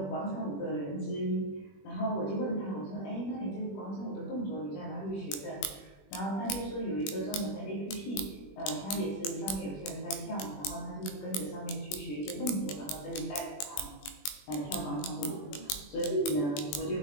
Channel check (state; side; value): late; right; 21 ms